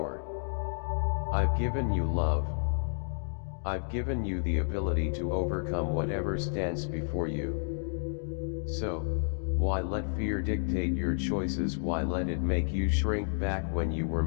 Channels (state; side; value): silent; right; digital silence